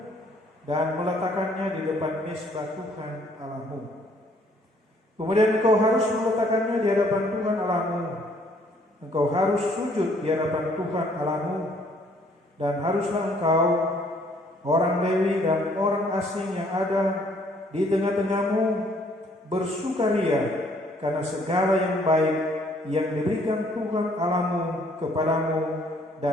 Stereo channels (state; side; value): normal; both; correlation 0.63